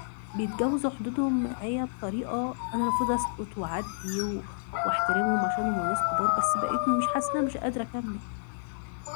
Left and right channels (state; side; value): silent; right; digital silence